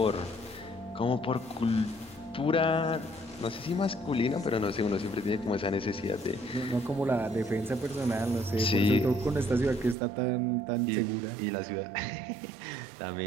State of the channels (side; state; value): left; drops out; at 10.0 s